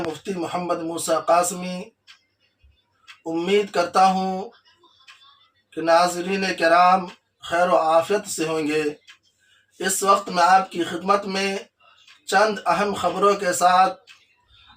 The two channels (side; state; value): both; identical; correlation 1.00